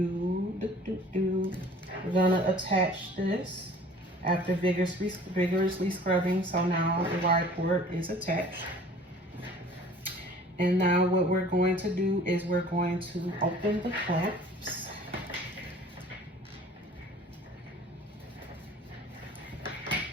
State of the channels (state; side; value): normal; both; correlation 0.49